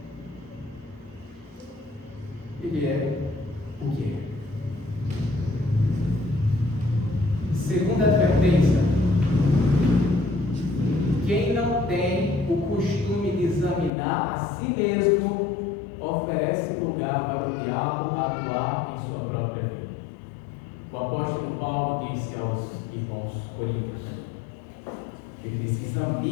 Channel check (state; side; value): drops out; right; at 13.9 s